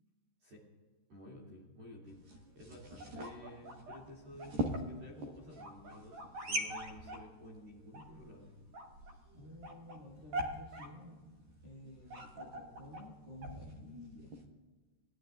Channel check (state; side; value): late; left; 13 ms